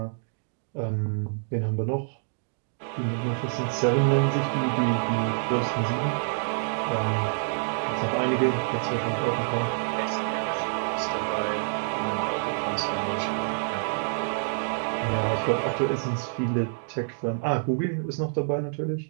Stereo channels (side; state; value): left; silent; digital silence